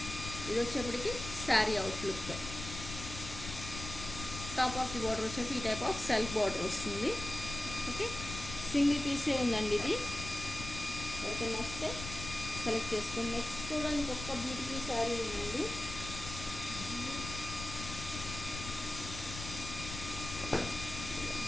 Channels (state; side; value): noise; left; rumble, 9 dB below the sound